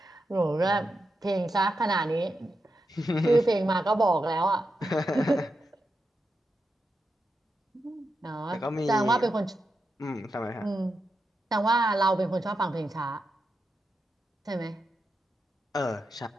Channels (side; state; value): both; normal; correlation 0.87